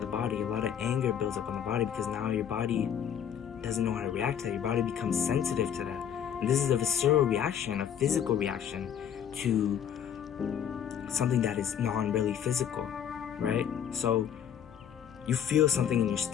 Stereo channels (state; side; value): quieter; right; 8.9 dB